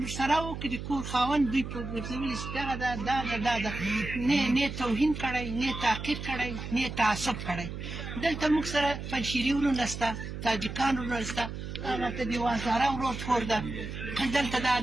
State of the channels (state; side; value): noise; right; hum, 7 dB below the sound